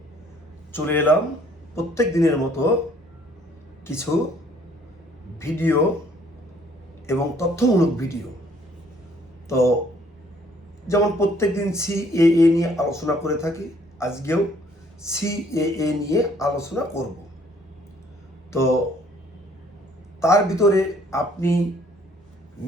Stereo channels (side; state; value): both; normal; correlation 0.61